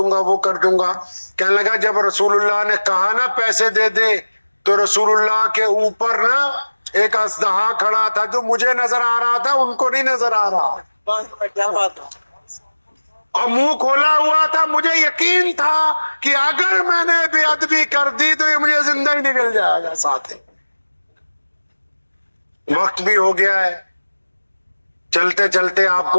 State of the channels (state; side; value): inverted; both; correlation -1.00